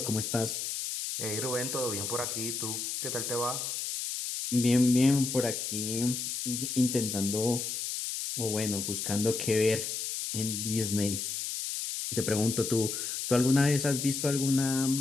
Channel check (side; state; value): left; noise; hiss, 3 dB below the sound